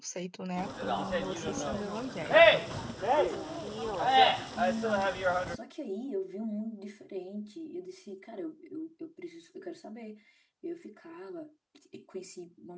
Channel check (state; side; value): identical; both; correlation 1.00